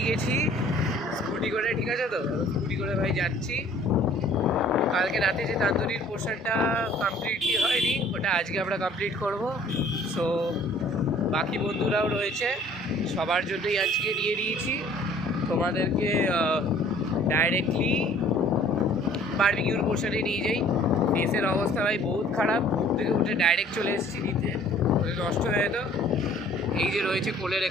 গেছি স্কুটি করে, ঠিক আছে তো? স্কুটি করে ভাই যাচ্ছি। কালকে রাতে যে তান্দুরির পোর্শনটা কমপ্লিটলি হয়নি, ওটা আজকে আমরা কমপ্লিট করব। সো বাকি বন্ধুরাও রয়েছে, সবার জন্যই আজকে নিয়ে নিয়েছি। তোমাদেরকে ডাইরেক্টলি বারবিকিউর পোর্শনে নিয়ে যাই। ফেসের অবস্থা ভাই বহুত খারাপ, ঘুম থেকে উঠে ডাইরেক্ট চলে এসেছি নিতে, নষ্ট হয়ে যেত। এই যে রয়েছে কোলের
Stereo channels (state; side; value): normal; both; correlation 0.54